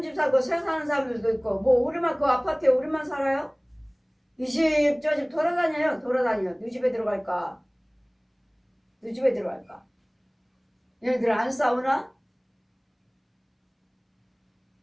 집 살고 새 사는 사람들도 있고 뭐 우리만 그 아파트에 우리만 살아요? 이 집 저 집 돌아다녀요. 네 집에 들어갈까? 얘네들 안 싸우나?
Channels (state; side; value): identical; both; correlation 1.00